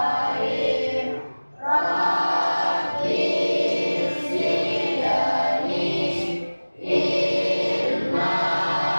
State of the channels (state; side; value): inverted; both; correlation -1.00